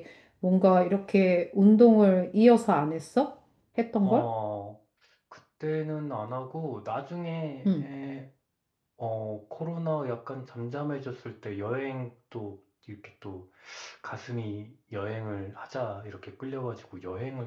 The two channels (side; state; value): both; identical; correlation 1.00